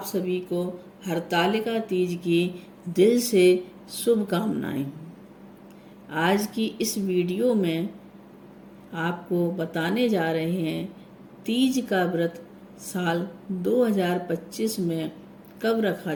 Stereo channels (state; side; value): identical; both; correlation 1.00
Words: सभी को हरतालिका तीज की दिल से शुभकामनाएं। आज की इस वीडियो में आपको बताने जा रहे हैं तीज का व्रत साल 2025 में कब रखा